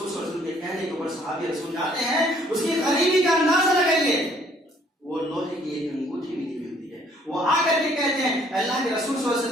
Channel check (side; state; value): both; normal; correlation 0.62